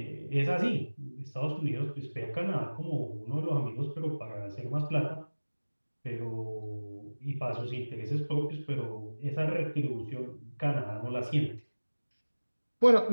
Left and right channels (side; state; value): both; inverted; correlation -1.00